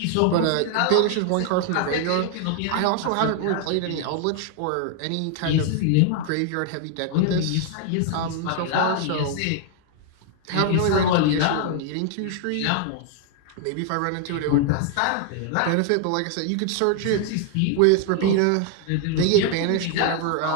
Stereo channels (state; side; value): different; both; correlation 0.00